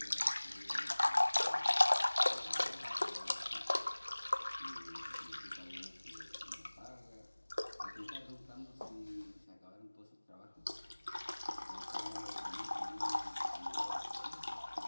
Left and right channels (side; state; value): both; inverted; correlation -1.00